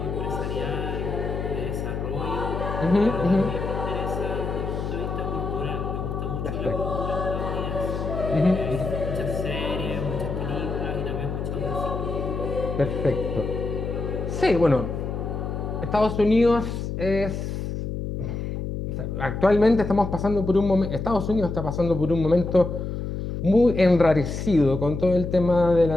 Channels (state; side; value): noise; left; hum, 4 dB below the sound